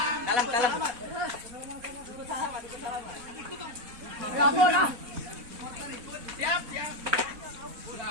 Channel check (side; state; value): left; late; 4.0 ms